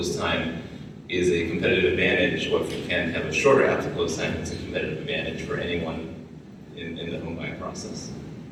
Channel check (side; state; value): both; identical; correlation 1.00